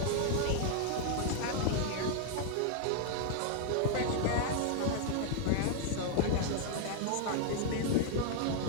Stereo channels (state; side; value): different; both; correlation 0.00